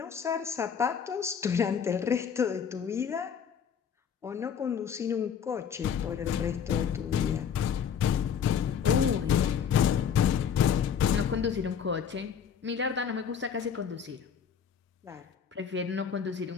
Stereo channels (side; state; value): right; quieter; 7.6 dB